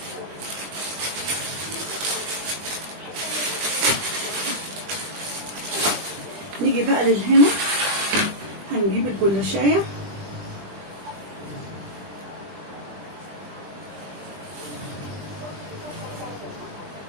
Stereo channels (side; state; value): left; late; 20 ms